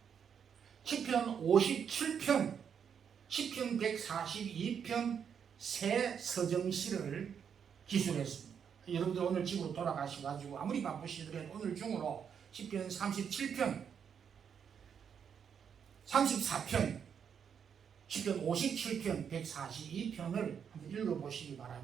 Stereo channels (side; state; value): left; quieter; 7.5 dB